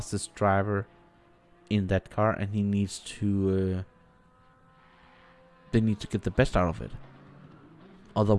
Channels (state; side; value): identical; both; correlation 1.00